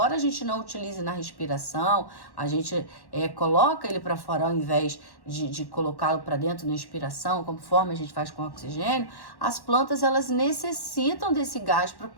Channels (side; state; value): right; late; 1.1 ms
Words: a gente não utilize na respiração, a gente coloca ele para fora ao invés de colocá-lo para dentro na expiração, conforme a gente faz com o oxigênio, as plantas elas necessitam desse gás para